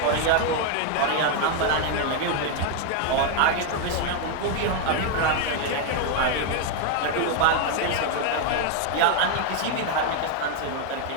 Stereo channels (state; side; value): different; both; correlation 0.01